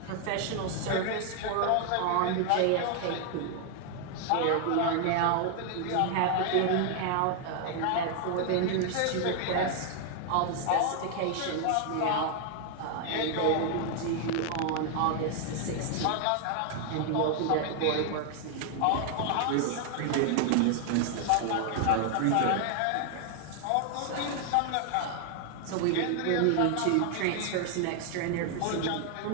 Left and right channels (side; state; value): both; different; correlation 0.00